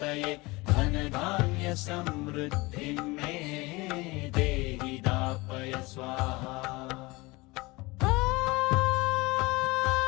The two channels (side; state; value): right; quieter; 23.3 dB